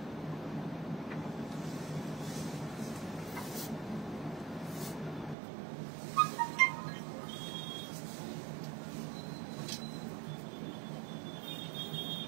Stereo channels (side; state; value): left; drops out; at 5.4 s